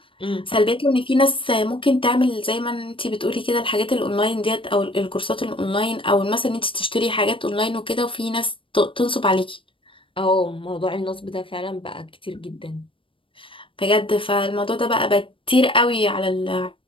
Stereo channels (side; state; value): right; late; 0.25 ms